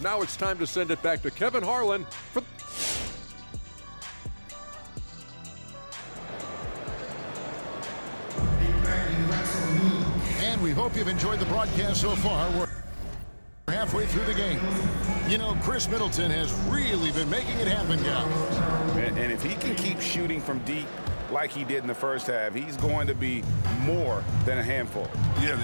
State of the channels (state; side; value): inverted; both; correlation -1.00